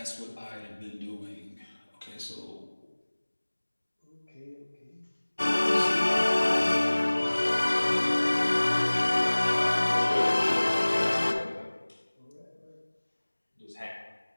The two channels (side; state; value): both; inverted; correlation -1.00